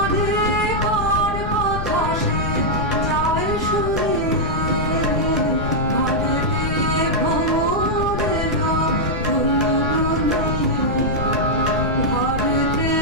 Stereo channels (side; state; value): left; noise; rumble, 3 dB below the sound